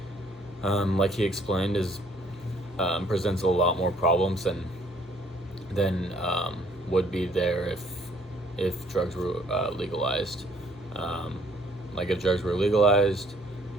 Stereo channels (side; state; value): both; normal; correlation 0.62